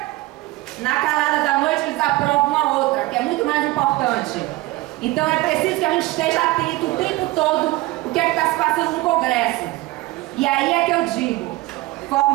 na calada da noite eles aprovam uma outra, que é muito mais importante. Então é preciso que a gente esteja atento o tempo todo o que é que está se passando no Congresso. E aí é que eu digo,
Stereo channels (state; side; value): quieter; left; 19.7 dB